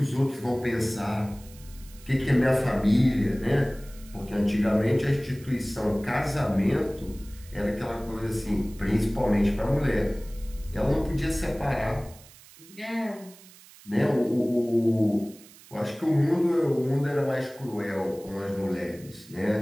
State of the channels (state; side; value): noise; right; hiss, 22 dB below the sound